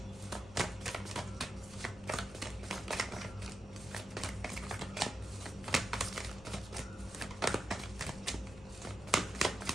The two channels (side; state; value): both; normal; correlation 0.87